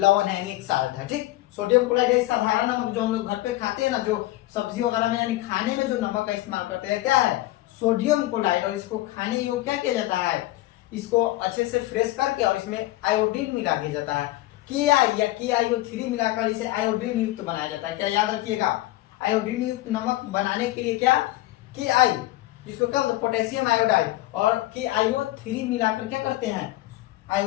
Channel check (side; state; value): right; quieter; 17.2 dB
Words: है, एक साल्ट है। ठीक, सोडियम क्लोराइड एक साधारण नमक जो हम लोग घर पे खाते हैं ना, जो सब्जी वगैरह में यानी खाने में जो नमक का इस्तेमाल करते हैं, क्या है, सोडियम क्लोराइड। और इसको खाने योग्य क्या किया जाता है, इसको अच्छे से फ्रेश करके और इसमें आयोडीन मिला दिया जाता है, के आई या KiO3 मिलाकर इसे आयोडीन युक्त बनाया जाता है। क्या याद रखिएगा, आयोडीन युक्त नमक बनाने के लिए क्या Ki, जिसको क्या होता है पोटेशियम आयोडाइड, और KiO3 मिलाकर क्या करते हैं